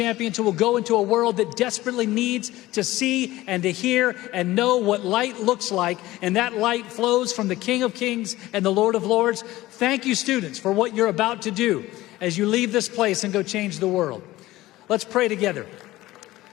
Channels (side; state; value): right; quieter; 17.2 dB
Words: who will go into a world that desperately needs to see and to hear and know what light looks like, and that light flows from the King of Kings and the Lord of Lords. Thank you, students, for what you're about to do as you leave this place and go change the world. Let's pray together.